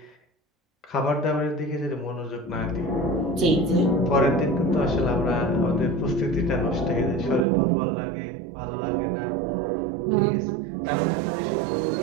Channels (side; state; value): left; drops out; at 7.5 s